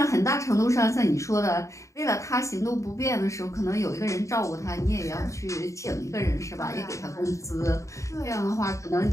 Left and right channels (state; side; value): late; right; 0.15 ms